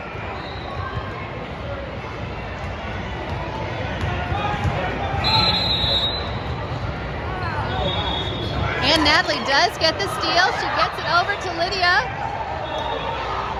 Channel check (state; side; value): identical; both; correlation 1.00